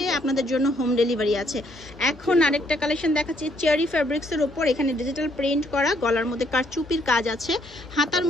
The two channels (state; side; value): normal; both; correlation 0.69